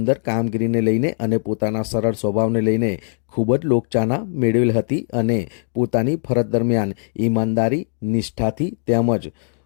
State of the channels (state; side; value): silent; right; digital silence